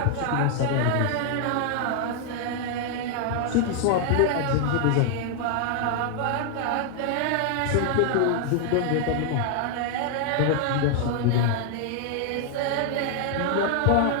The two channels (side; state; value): both; different; correlation 0.00